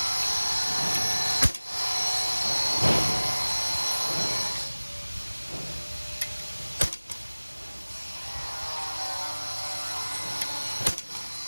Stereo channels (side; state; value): both; inverted; correlation -1.00